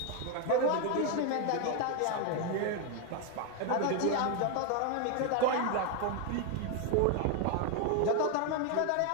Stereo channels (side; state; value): both; different; correlation 0.01